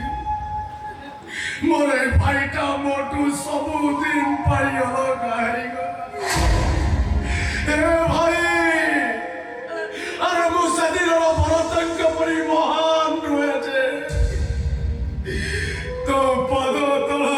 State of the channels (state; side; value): identical; both; correlation 1.00